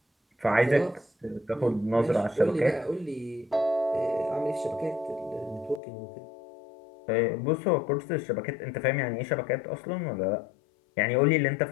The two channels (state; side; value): drops out; right; at 5.8 s